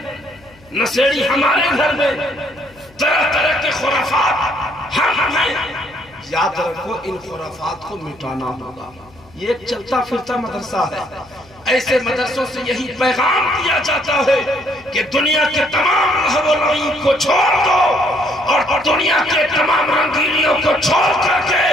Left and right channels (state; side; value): noise; left; hum, 27 dB below the sound